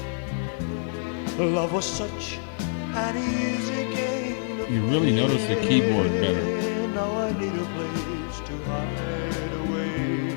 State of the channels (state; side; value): silent; right; 61 dB below the other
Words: love was such an easy game. You really notice the keyboard better. Now I need a place to hide